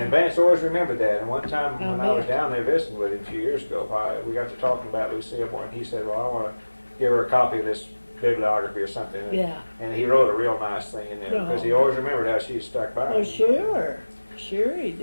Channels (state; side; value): inverted; both; correlation -1.00